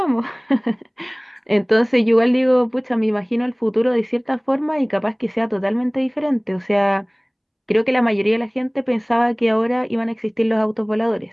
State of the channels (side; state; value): both; identical; correlation 1.00